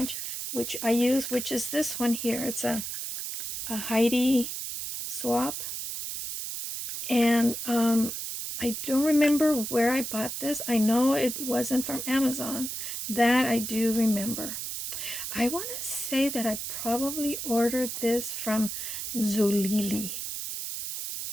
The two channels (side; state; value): right; noise; hiss, 5 dB below the sound